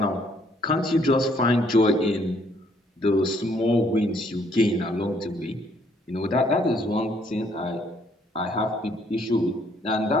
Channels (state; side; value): normal; both; correlation 0.66